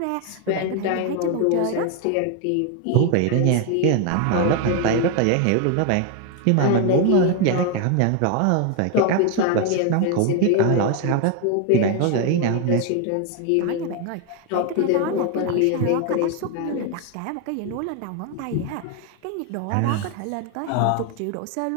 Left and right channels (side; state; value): both; different; correlation 0.01